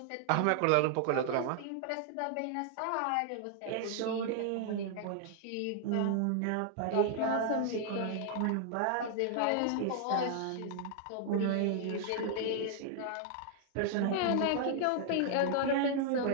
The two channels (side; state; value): both; different; correlation -0.01